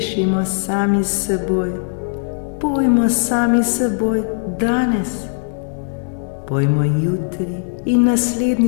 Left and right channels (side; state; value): right; silent; digital silence